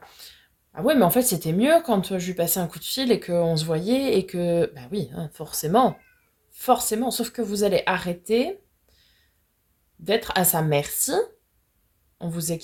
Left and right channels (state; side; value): identical; both; correlation 1.00